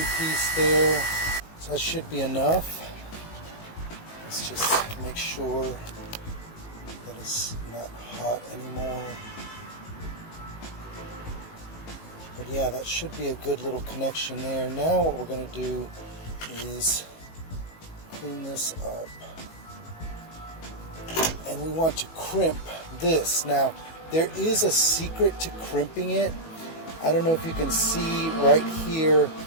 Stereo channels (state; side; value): late; right; 18 ms